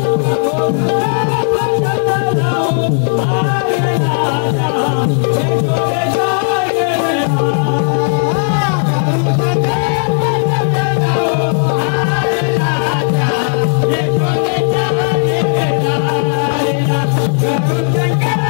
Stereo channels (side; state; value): right; silent; digital silence